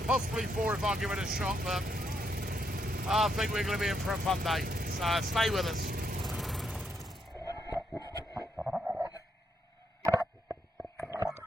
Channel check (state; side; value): normal; both; correlation 0.77